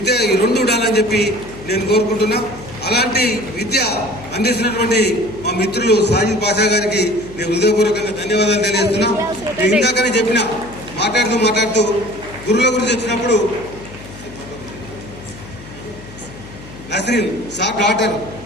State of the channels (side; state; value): left; noise; hum, 17 dB below the sound